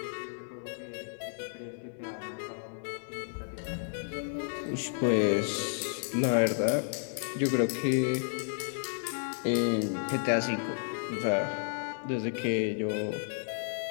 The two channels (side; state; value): right; silent; 56 dB below the other